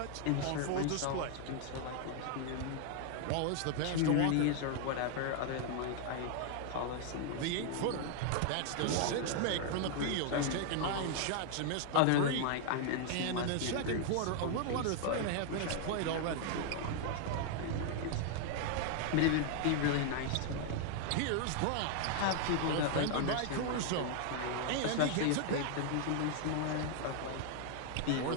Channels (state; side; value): different; both; correlation 0.00